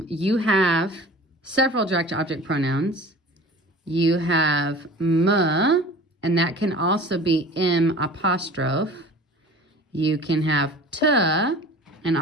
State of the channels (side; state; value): both; normal; correlation 0.42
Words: you have several direct object pronouns. You have me, and that can also be M apostrophe. You can have te, and